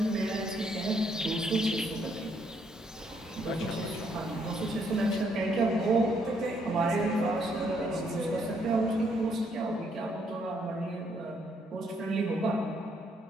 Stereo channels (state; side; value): normal; both; correlation 0.71